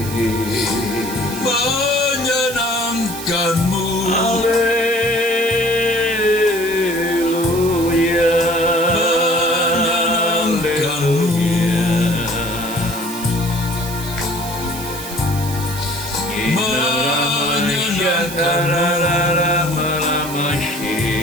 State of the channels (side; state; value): right; noise; hiss, 11 dB below the sound